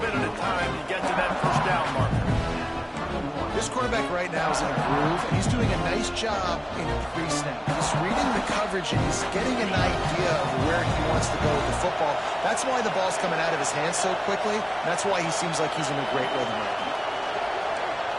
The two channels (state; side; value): identical; both; correlation 1.00